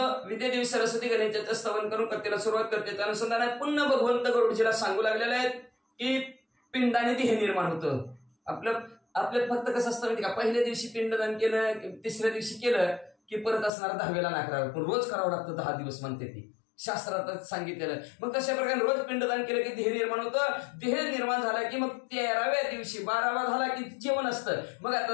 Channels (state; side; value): drops out; right; at 13.7 s